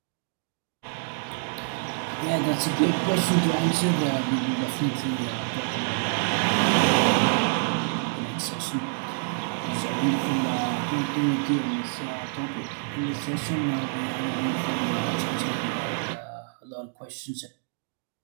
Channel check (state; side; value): silent; left; digital silence